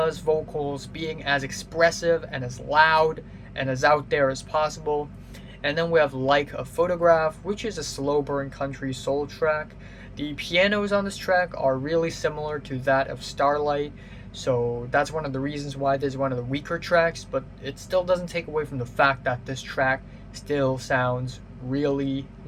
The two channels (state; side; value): identical; both; correlation 1.00